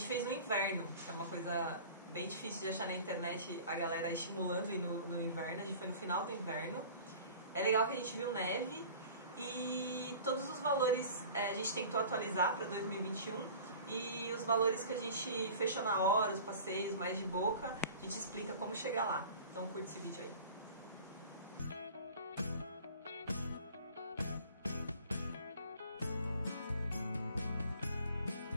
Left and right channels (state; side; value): inverted; both; correlation -0.42